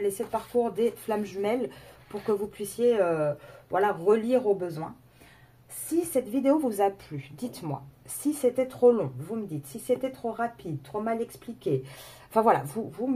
7 parcours des flammes jumelles pour que vous puissiez relire au besoin. Si cette vidéo vous a plu, dites-moi. Si c'était trop long, vous me dites. Si c'était trop rapide, trop mal expliqué. Enfin voilà, vous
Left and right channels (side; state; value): both; identical; correlation 1.00